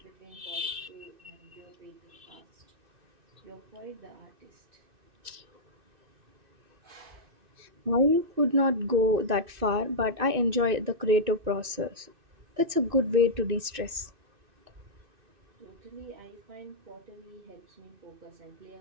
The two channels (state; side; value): late; left; 2.6 ms